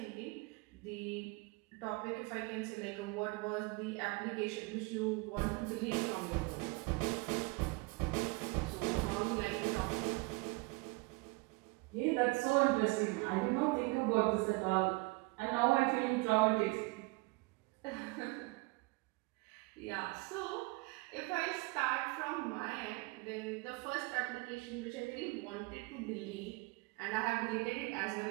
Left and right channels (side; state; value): left; quieter; 25.7 dB